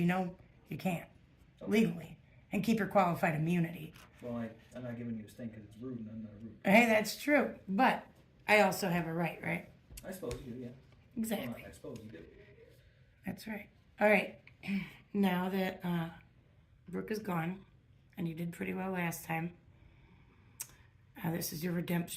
know you can't. Legally. And keep your qualified immunity. Well, I'm not giving you a stink because it's rude and I'm not rude. Hey, that's true. But I also have a right, right? I suppose you do, yeah. Exactly. Well, I suppose you do. That's right. All right. Now that Brooke is gone, and you did pretty well last time, this is your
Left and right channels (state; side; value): identical; both; correlation 1.00